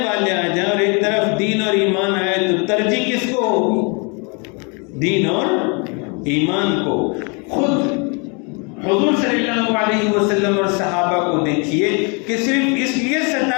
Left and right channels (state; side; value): quieter; right; 33.2 dB